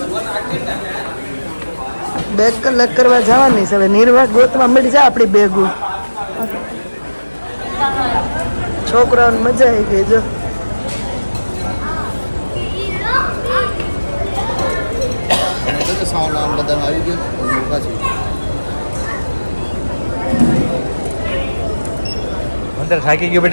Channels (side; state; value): both; inverted; correlation -1.00